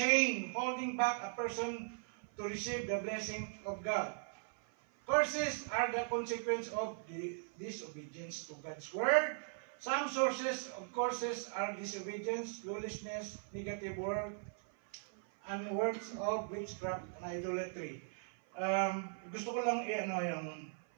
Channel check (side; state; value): left; silent; 52 dB below the other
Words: holding back a person to receive the blessing of God. Curses are the consequence of the disobedience to God's word. Some sources of curses are disobedience, lawlessness, negative word, and works of witchcraft and idolatry. Gusto ko lang